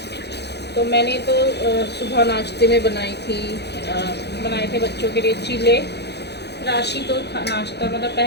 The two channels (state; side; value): late; right; 0.49 ms